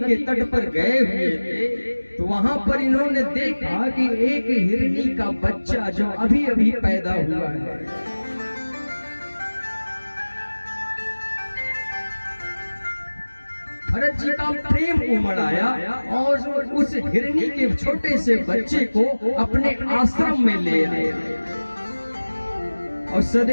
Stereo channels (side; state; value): both; inverted; correlation -1.00